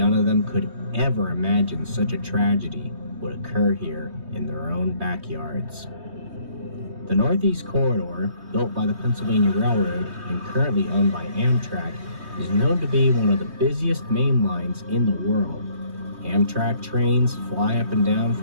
of them could ever imagine such a tragedy would occur here in their own backyards. The Northeast Corridor, built by the Pennsylvania Railroad and currently owned by Amtrak, is known to be one of the busiest main lines in the world. Amtrak trains fly up and down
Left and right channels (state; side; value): late; left; 3.2 ms